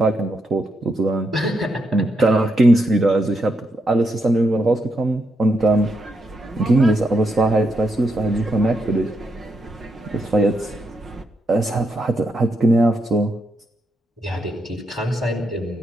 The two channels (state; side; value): normal; both; correlation 0.81